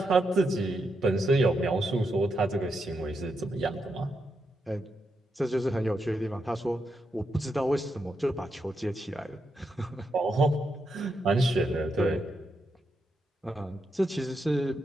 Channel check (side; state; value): both; normal; correlation 0.83